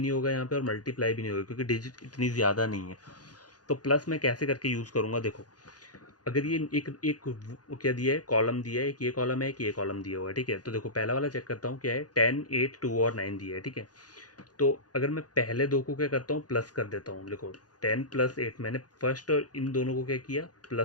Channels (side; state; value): right; late; 0.69 ms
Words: होगा यहाँ पे, और मल्टीप्लाई भी नहीं होगा, क्योंकि डिजिट इतनी ज़्यादा नहीं है। तो प्लस मैं कैसे करके यूज़ करूँगा, देखो अगर ये एक एक क्या दिया है, कॉलम दिया है, एक ये कॉलम है, एक ये कॉलम दिया हुआ है, ठीक है। तो देखो पहला वाला चेक करता हूँ क्या है, 10 8 2 और 9 दिया है, ठीक है। तो अगर मैं पहले दो को क्या करता हूँ, प्लस कर देता हूँ, देखो 10 + 8, मैंने फर्स्ट और इन दोनों को क्या किया,